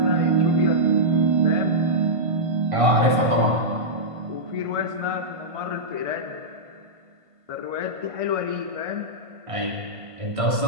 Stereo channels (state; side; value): late; left; 1.5 ms